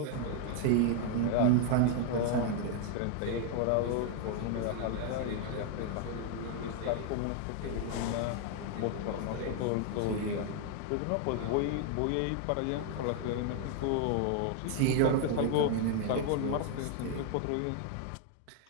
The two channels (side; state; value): both; different; correlation 0.00